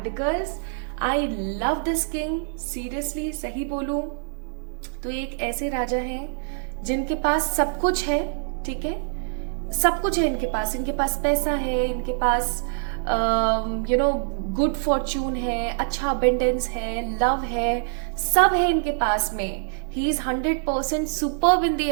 I love this king, seriously सही बोलूं तो एक ऐसे राजा हैं जिनके पास सब कुछ है, ठीक है, सब कुछ है इनके पास पैसा है, इनके पास गुड फॉर्च्यून है, अच्छा अबेंडेंस है, लव है, सब है इनके पास में। He is 100% superb in the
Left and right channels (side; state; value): left; silent; 58 dB below the other